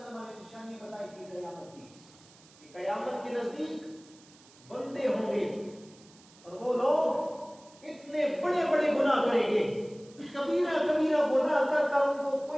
نے نشانی بتائی تھی قیامت کی، کہ قیامت کے نزدیک بندے ہوں گے اور وہ لوگ اتنے بڑے بڑے گناہ کریں گے، کبیرہ کبیرہ گناہ کر کر ان کو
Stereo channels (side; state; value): right; noise; hiss, 25 dB below the sound